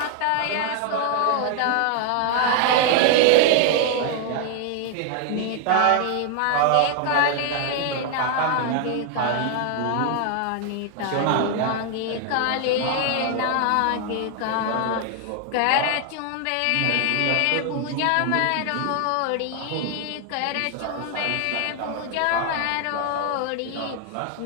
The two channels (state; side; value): different; both; correlation 0.00